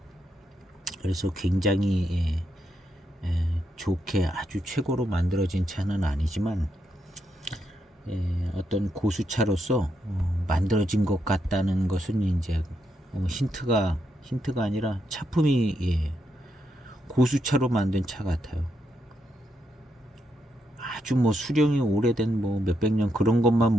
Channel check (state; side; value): normal; both; correlation 0.81